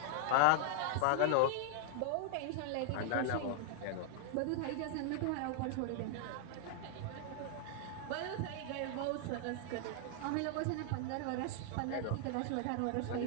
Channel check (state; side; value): different; both; correlation 0.00